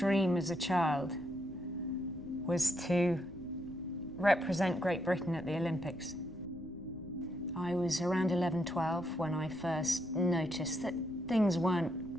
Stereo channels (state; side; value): noise; right; rumble, 21 dB below the sound